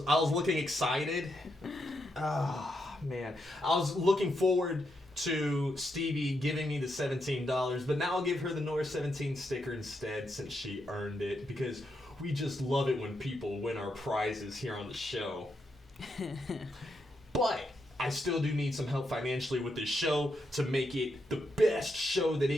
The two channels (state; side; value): normal; both; correlation 0.82